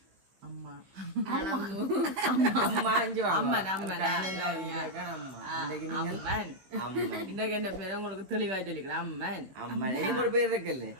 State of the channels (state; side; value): late; left; 16 ms